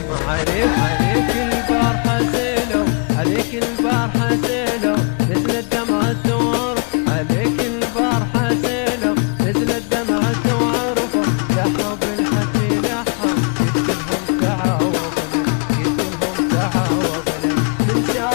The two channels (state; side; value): quieter; right; 39.5 dB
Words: عليك البارحة زيلو عليك البارحة زيلو نزلت دمعة وعرف عليك البارحة زيلو نزلت دمعة وعرف لحب الحكي لحم قلت لهم تعاوفنا قلت لهم تعاوفنا من